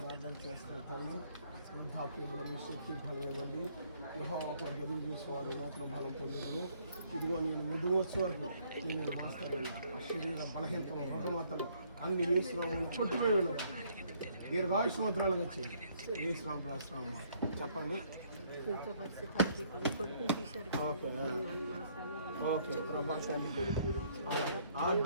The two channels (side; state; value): both; inverted; correlation -0.66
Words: చేస్తున్న తల్లి వృద్ధాప్యముల మీ శక్తి బలం ఇవ్వండి. యెహోవాపై ఎదురు చూసేవారు నూతన బలం పొందుదును. ఇదిగో నేను మెదుగు వచ్చే వరకు నేను మాస్తాను. ఆ శరీర బలహీనతలు, రుగ్మతలు అన్ని యేసునామమున చుట్టుపోయి వెళ్ళగా దీర్ఘాయుష్మంత్రాలుగా వచ్చి యేసునామ రాస్తున్నాం. చెప్పండి. ఓకే ఓకే ప్రభాసానికి